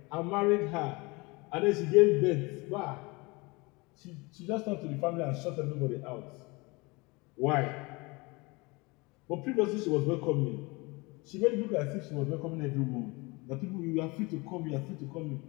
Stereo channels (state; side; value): quieter; right; 25.8 dB